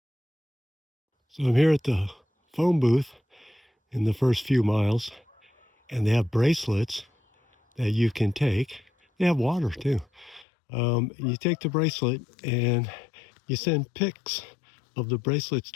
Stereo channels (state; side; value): drops out; right; at 10.5 s